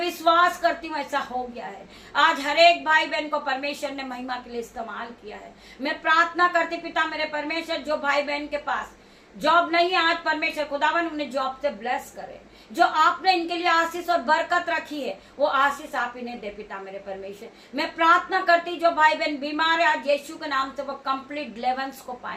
करती हूँ ऐसा हो गया है। आज हर एक भाई बहन को परमेश्वर ने महिमा के लिए इस्तेमाल किया है। मैं प्रार्थना करती पिता मेरे परमेश्वर, जो भाई बहन के पास जॉब नहीं है, आज परमेश्वर खुदावन उन्हें जॉब से ब्लेस करे। जो आपने इनके लिए आशीष और बरकत रखी है वो आशीष आप इन्हें दे पिता मेरे परमेश्वर। मैं प्रार्थना करती, जो भाई बहन बीमार है, आज यीशु के नाम से वो कंप्लीट डिलीवरेंस को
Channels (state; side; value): identical; both; correlation 1.00